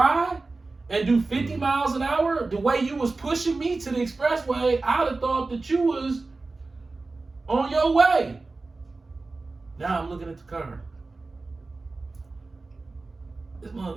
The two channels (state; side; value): quieter; left; 3.5 dB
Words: and do 50 miles an hour? The way you was pushing me to the expressway, I'd have thought that you was on your way. Now I'm looking at the car. I'm